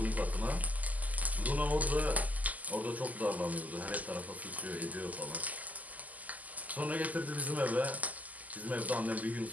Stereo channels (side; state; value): left; late; 0.078 ms